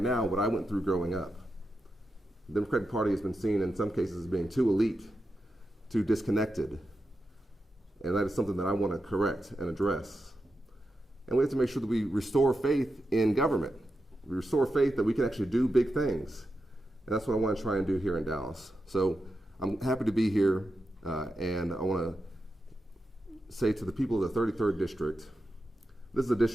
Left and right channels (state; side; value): normal; both; correlation 0.88